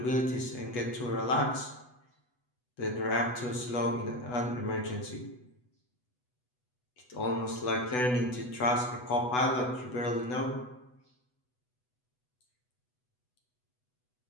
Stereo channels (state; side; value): late; right; 8.1 ms